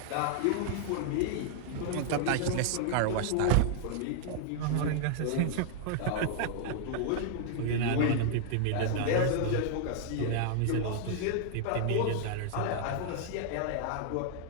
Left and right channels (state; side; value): different; both; correlation -0.01